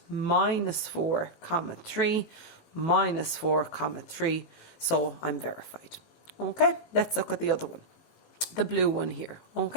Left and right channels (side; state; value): right; late; 18 ms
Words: Minus 4 comma 3, minus 4 comma 3. So I'm verified. Okay, let's look at the other one. The blue one here.